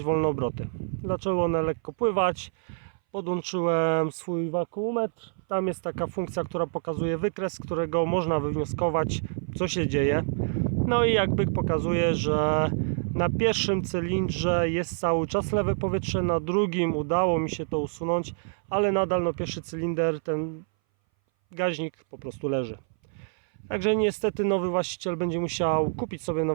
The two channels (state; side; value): silent; left; 59 dB below the other